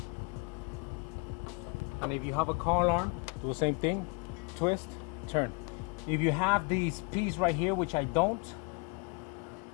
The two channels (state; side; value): quieter; right; 32.9 dB